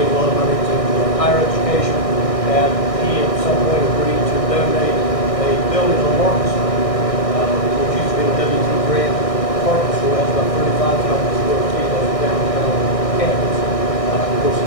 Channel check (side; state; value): right; late; 1.6 ms